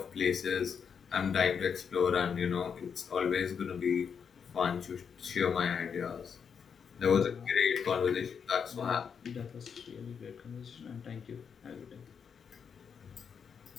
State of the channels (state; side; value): quieter; right; 6.8 dB